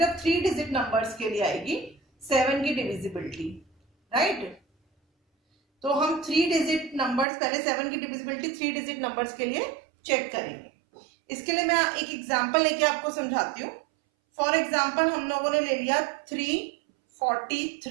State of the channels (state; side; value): drops out; left; at 7.2 s